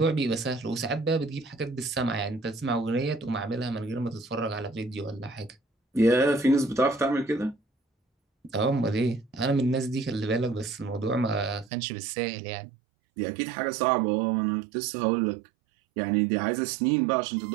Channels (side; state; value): left; drops out; at 11.7 s